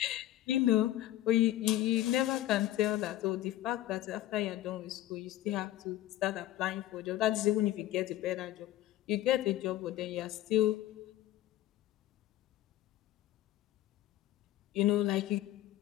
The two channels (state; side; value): quieter; right; 14.0 dB